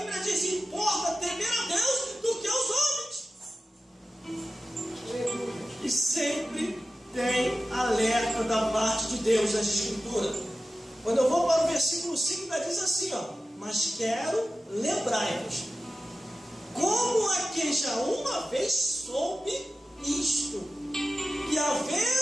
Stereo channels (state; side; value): normal; both; correlation 0.95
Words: diz: importa temer a Deus do que aos homens. E sempre tem alerta da parte de Deus nas Escrituras. Quando eu vou para o versículo 5, ainda diz assim, mas quero lembrar-vos, como a quem já uma vez soube isto, que